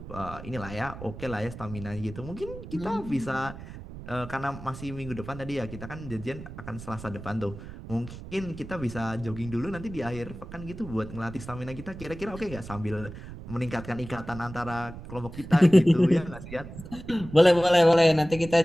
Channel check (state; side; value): noise; right; rumble, 13 dB below the sound